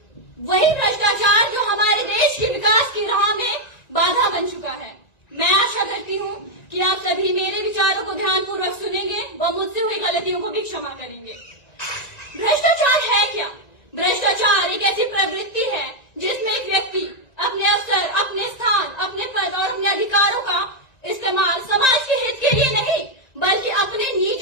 वही भ्रष्टाचार जो हमारे देश के विकास की राह में बाधा बन चुका है। मैं आशा करती हूँ कि आप सभी मेरे विचारों को ध्यानपूर्वक सुनेंगे व मुझसे हुई गलतियों को भी क्षमा करेंगे। भ्रष्टाचार है क्या? भ्रष्टाचार एक ऐसी प्रवृत्ति है जिसमें एक व्यक्ति अपने अवसर, अपने स्थान, अपने पद और अपने अधिकारों का इस्तेमाल समाज के हित के लिए नहीं बल्कि अपने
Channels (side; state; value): right; late; 1.9 ms